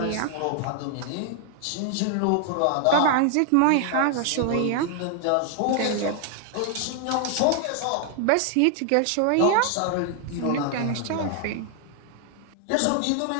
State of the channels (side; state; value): both; different; correlation 0.00